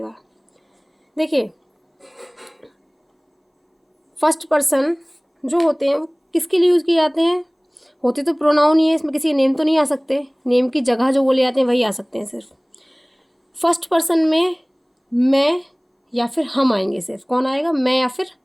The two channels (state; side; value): identical; both; correlation 1.00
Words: देखिए फर्स्ट पर्सन जो होते हैं वो किसके लिए यूज़ किए जाते हैं, होते तो प्रोनाउन ही है, इसमें किसी नेम तो नहीं आ सकते, नेम की जगह जो बोले जाते हैं वही आ सकते हैं सिर्फ। फर्स्ट पर्सन में मैं या फिर हम आएंगे, सिर्फ कौन आएगा, मैं या फिर